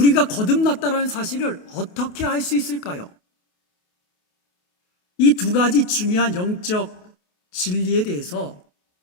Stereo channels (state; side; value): late; right; 28 ms